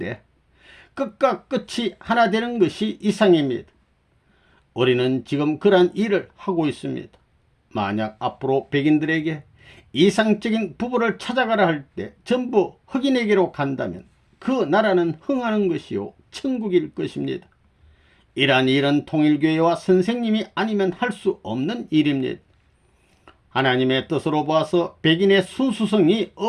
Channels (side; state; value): both; identical; correlation 1.00